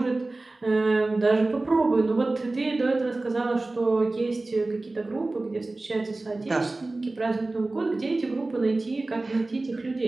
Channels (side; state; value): left; quieter; 3.1 dB